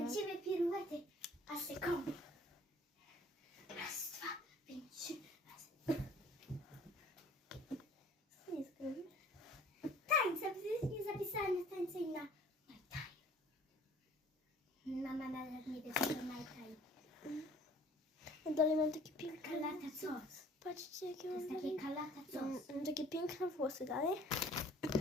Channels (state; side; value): normal; both; correlation 0.52